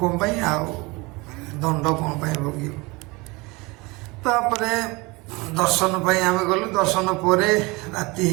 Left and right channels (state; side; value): quieter; left; 24.8 dB